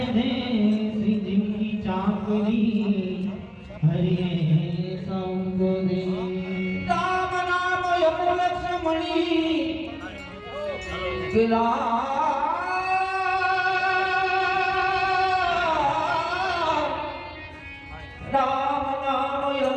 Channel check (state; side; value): identical; both; correlation 1.00